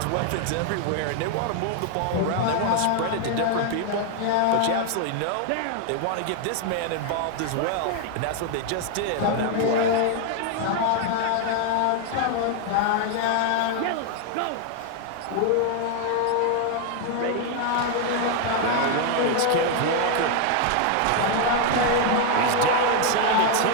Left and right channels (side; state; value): both; different; correlation 0.00